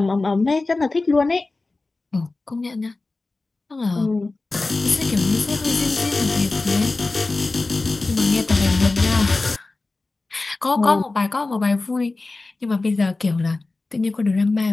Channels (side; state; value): right; quieter; 3.4 dB